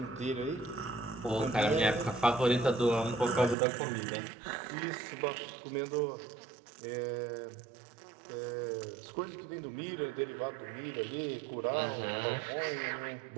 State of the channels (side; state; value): left; drops out; at 3.6 s